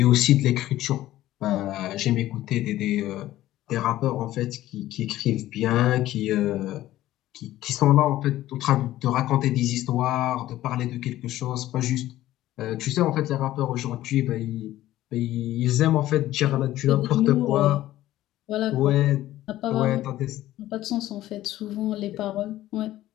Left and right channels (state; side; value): quieter; right; 14.7 dB